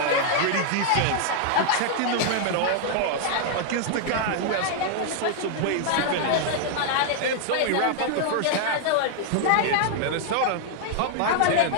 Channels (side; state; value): both; different; correlation 0.00